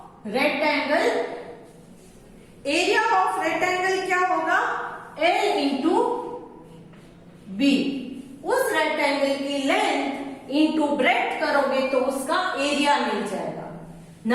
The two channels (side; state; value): both; identical; correlation 1.00